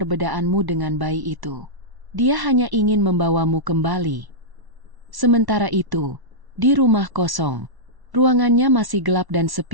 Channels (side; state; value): left; late; 1.1 ms